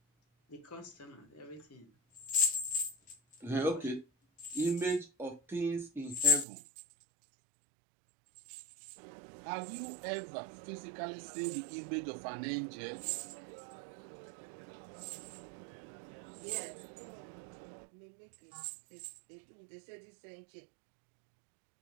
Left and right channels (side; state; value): left; drops out; at 6.5 s